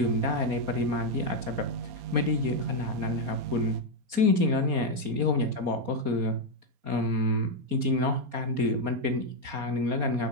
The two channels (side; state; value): left; late; 4.2 ms